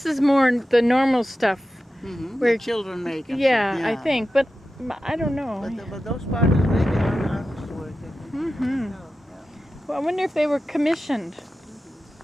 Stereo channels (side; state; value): both; normal; correlation 0.92